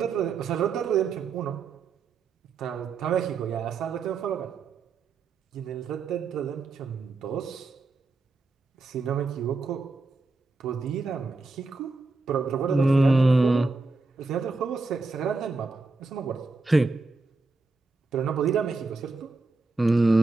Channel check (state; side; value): quieter; left; 3.8 dB